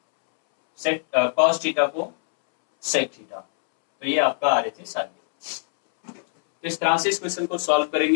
कॉस थीटा को सेक थीटा। तो ये आपका RHS आ गया। तो इस तरह से इस क्वेश्चन को सॉल्व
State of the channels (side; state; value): right; silent; 64 dB below the other